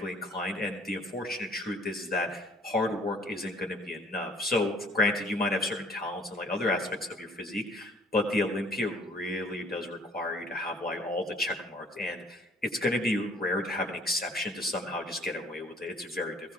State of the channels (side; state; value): both; normal; correlation 0.57